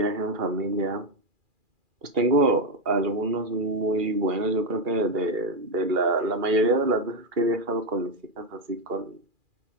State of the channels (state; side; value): late; left; 2.4 ms